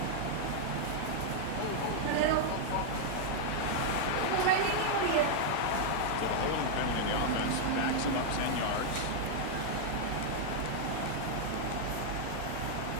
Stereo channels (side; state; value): both; different; correlation -0.01